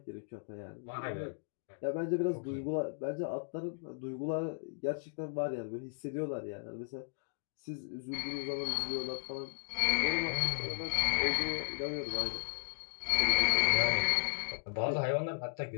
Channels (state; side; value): silent; right; digital silence